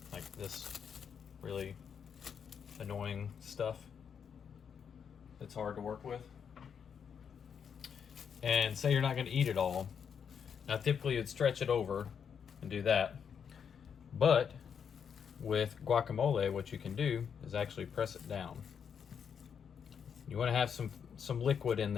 like this really annoying stuff that's hard to work with. And say you're not going to eat it all. Now typically you'd stretch it over and do that. But with guacamole, what you can do is actually press it down. You want to have some liquid in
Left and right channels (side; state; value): right; quieter; 7.2 dB